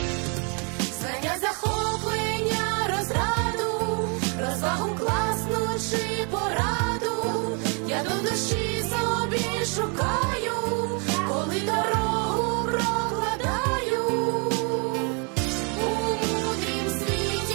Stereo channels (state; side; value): quieter; left; 35.8 dB